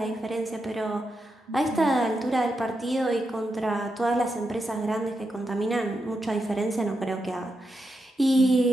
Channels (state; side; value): normal; both; correlation 0.86